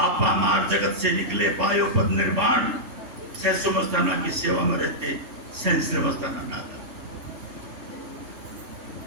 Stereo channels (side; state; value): left; late; 3.2 ms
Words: मार जगत से निकले पायो पद निर्वाण, सहसो मस्ताना की सेवा में रहते सहस मस्ताना नादा।